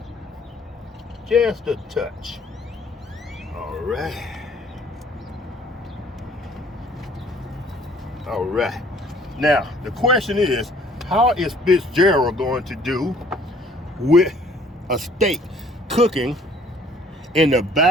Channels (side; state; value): both; normal; correlation 0.57